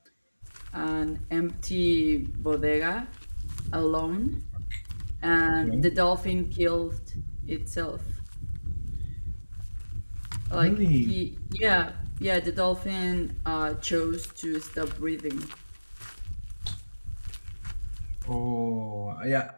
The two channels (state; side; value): inverted; both; correlation -1.00